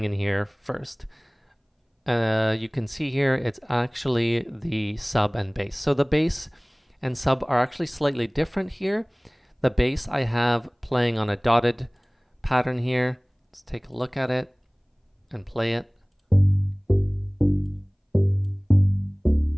in here first? You can see here it's actually the sub and bass. So the bass and sub are actually slightly different here. The bass I have playing on a dotted pattern here. Let's take a look at it and play it.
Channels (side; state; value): both; identical; correlation 1.00